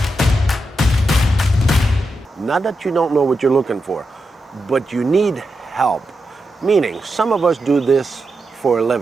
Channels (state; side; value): normal; both; correlation 0.87